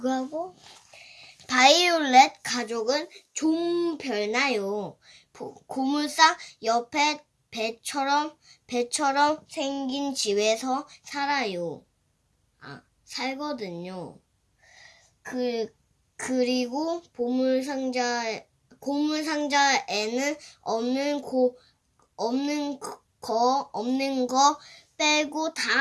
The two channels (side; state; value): both; identical; correlation 1.00